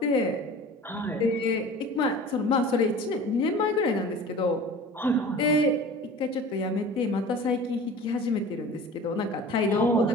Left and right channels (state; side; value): normal; both; correlation 0.40